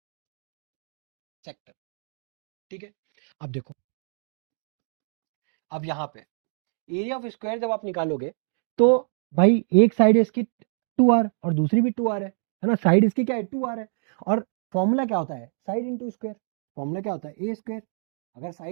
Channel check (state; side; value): silent; left; digital silence